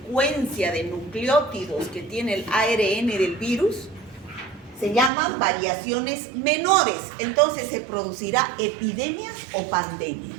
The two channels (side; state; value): left; drops out; at 5.1 s